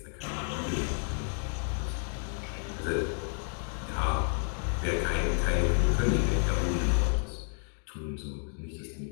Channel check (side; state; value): right; silent; 57 dB below the other